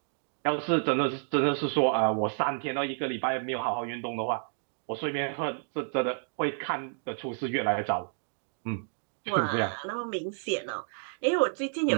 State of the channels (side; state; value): left; silent; digital silence